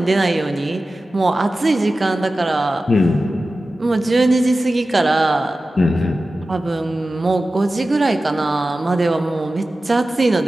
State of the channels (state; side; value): normal; both; correlation 0.95